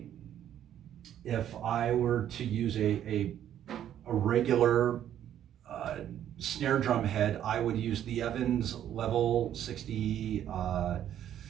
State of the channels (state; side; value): quieter; left; 10.7 dB